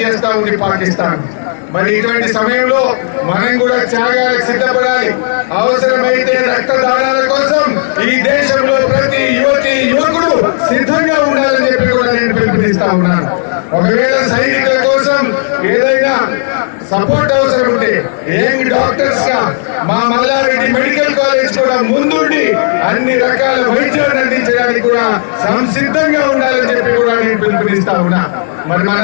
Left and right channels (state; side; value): silent; right; digital silence